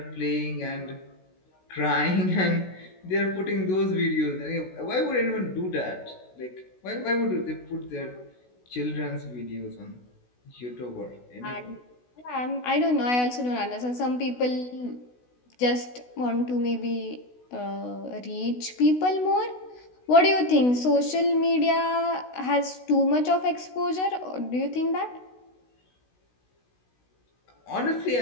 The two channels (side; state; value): right; late; 16 ms